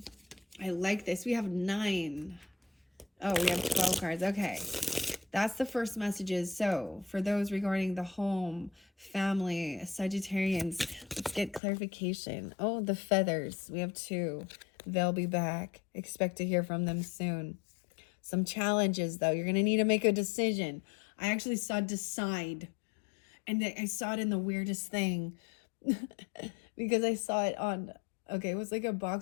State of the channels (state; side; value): drops out; right; at 11.6 s